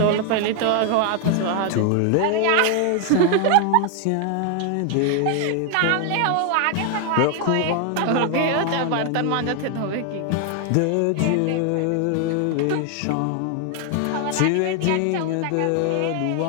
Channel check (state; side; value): different; both; correlation 0.00